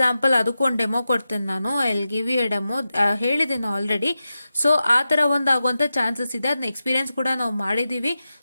ಅದಕ್ಕೊಂದು ಡೆಮೋ ಕೊಡ್ತೇನೆ ನಾನು, I give you a demo, ಹೇಳಿದ್ದೀನಿ ಆಲ್ರೆಡಿ. ಸೊ ಆ ಥರ ಒಂದು ಆಗುವಂಥ ಚಾನ್ಸಸ್ ಇದೆ, ಅದನ್ನ ಎಕ್ಸ್ಪೀರಿಯನ್ಸ್ ಕೂಡ ನಾವು ಮಾಡಿದ್ದೀವಿ.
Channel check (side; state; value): both; inverted; correlation -0.91